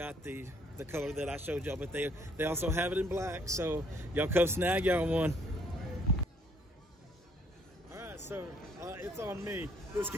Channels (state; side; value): normal; both; correlation 0.64